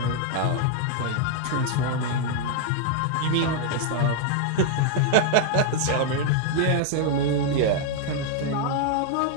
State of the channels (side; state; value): both; different; correlation 0.00